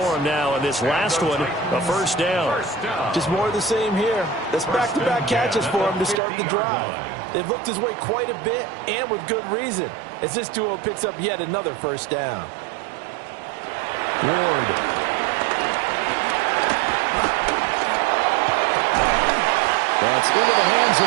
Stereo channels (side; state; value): left; drops out; at 6.2 s